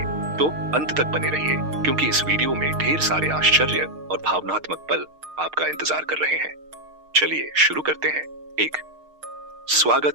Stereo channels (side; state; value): left; late; 6.5 ms